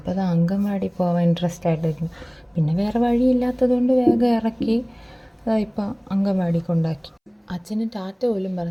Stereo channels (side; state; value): both; identical; correlation 1.00